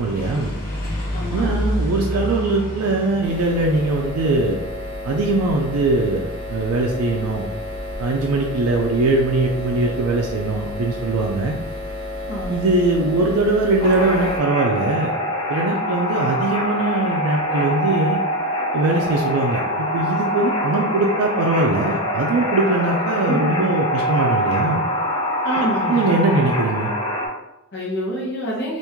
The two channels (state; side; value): normal; both; correlation 0.21